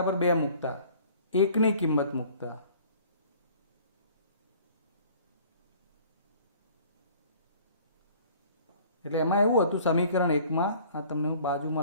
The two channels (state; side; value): inverted; both; correlation -0.51